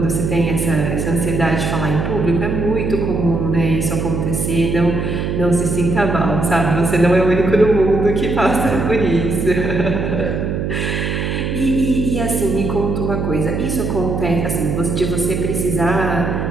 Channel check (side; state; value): right; noise; hum, 2 dB below the sound